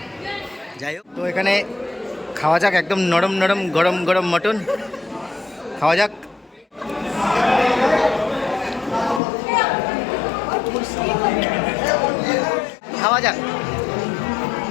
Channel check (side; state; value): right; drops out; at 9.2 s